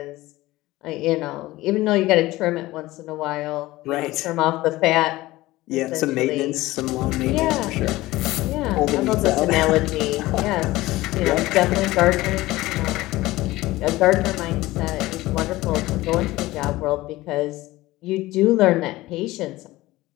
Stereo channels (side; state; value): right; quieter; 18.3 dB